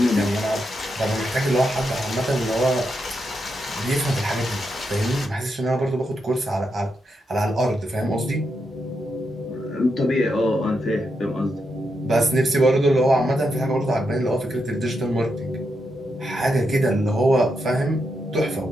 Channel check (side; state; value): both; normal; correlation 0.83